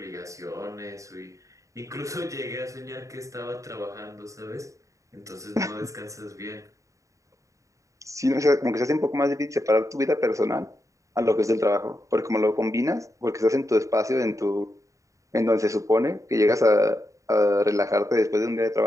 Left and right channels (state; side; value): late; left; 0.16 ms